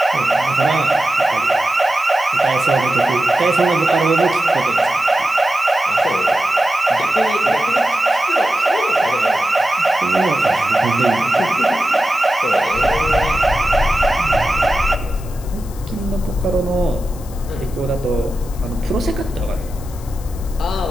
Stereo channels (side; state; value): left; noise; hiss, 20 dB below the sound